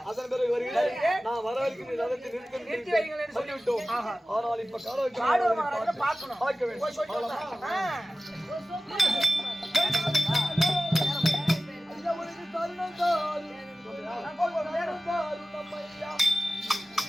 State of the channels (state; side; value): normal; both; correlation 0.96